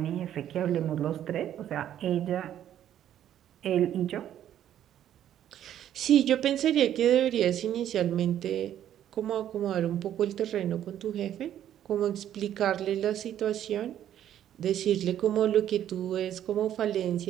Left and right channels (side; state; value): left; quieter; 11.0 dB